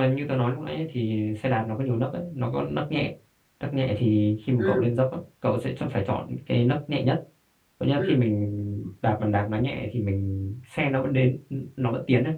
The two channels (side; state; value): both; identical; correlation 1.00